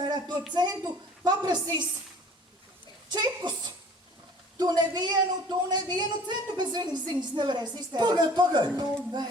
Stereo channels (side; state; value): both; normal; correlation 0.50